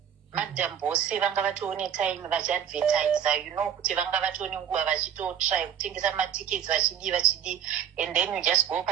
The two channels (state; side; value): quieter; left; 9.2 dB